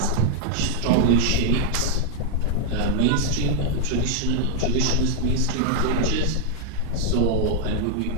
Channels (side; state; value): both; different; correlation 0.00